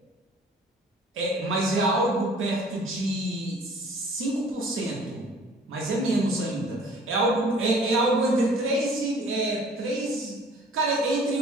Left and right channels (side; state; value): both; normal; correlation 0.52